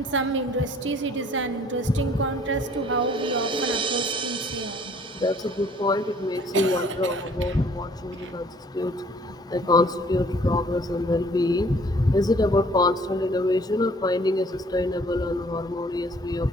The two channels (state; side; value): normal; both; correlation 0.57